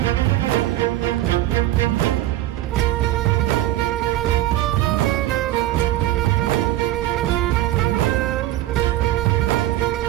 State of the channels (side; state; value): left; quieter; 14.9 dB